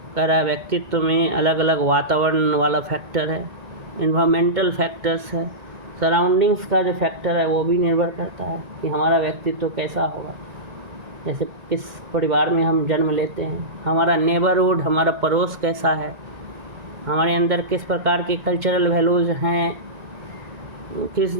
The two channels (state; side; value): late; left; 2.1 ms